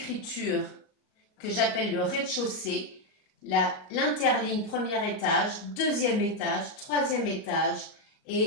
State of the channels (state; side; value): late; right; 38 ms